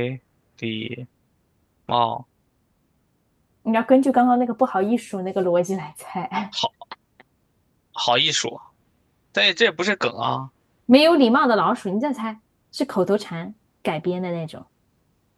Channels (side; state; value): both; identical; correlation 1.00